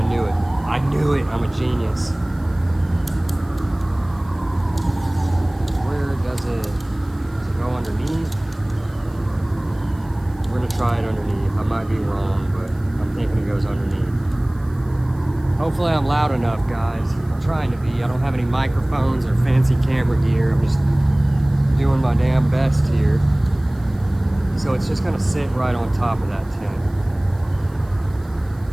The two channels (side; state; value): right; noise; hiss, 30 dB below the sound